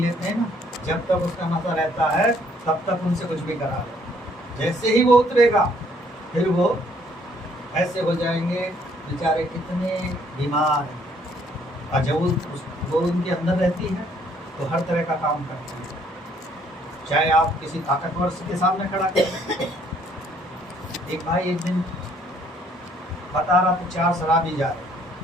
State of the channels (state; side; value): normal; both; correlation 0.64